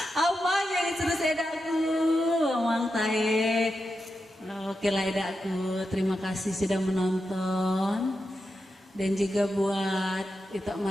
apa yang serius edaku, Mang Taek. Oke lah edaku, terima kasih sudah menonton. Dan juga buat Ito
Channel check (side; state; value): both; normal; correlation 0.88